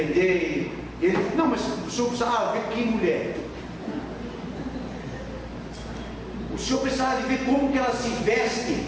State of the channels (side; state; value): both; identical; correlation 1.00